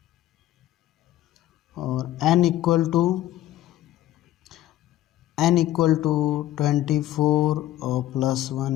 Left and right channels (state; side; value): quieter; right; 13.9 dB